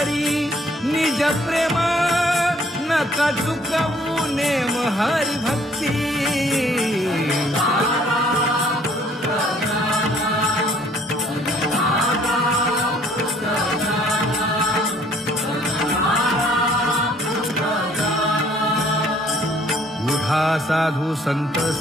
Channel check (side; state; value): both; normal; correlation 0.60